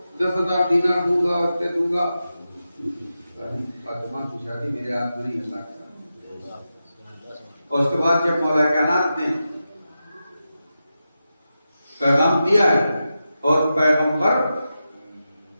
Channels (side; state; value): both; inverted; correlation -0.90